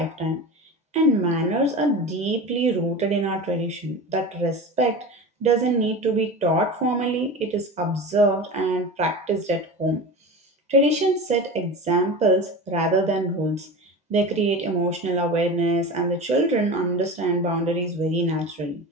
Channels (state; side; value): normal; both; correlation 0.30